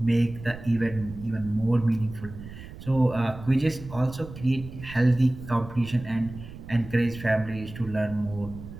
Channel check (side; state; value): right; noise; rumble, 14 dB below the sound